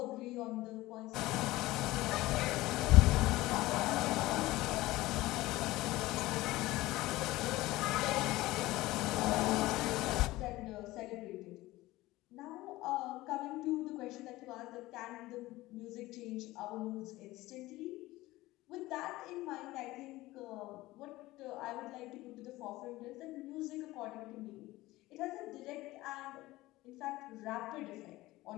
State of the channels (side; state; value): right; quieter; 18.3 dB